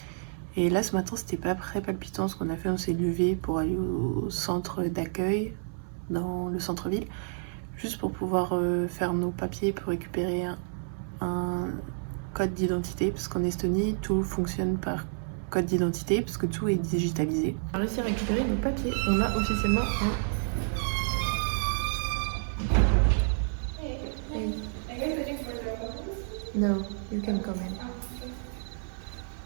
Et là, ce matin, c'était pas très palpitant. Ce qu'on a fait, on s'est levé pour aller au centre d'accueil, dans le centre-ville, juste pour pouvoir faire nos papiers pour récupérer un code d'identité, parce qu'en Estonie, tout fonctionne par code d'identité, parce que tout est digitalisé. On a réussi à récupérer nos papiers. On a officiellement un... No, you can come in.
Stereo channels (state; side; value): silent; left; 58 dB below the other